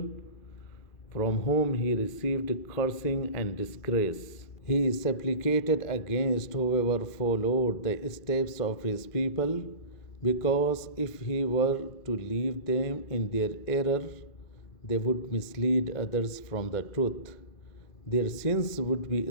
from whom he received cursing and disgrace. He supplicated against whoever followed the steps of his people, because if he were to leave them in their error, they would mislead others from the truth. Their sins would be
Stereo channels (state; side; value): late; right; 2.4 ms